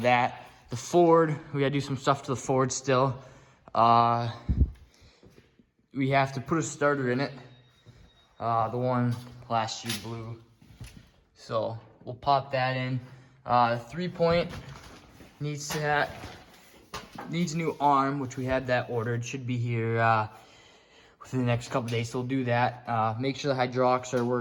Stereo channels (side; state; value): both; identical; correlation 1.00